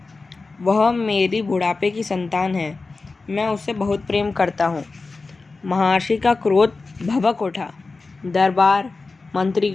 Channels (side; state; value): right; quieter; 3.8 dB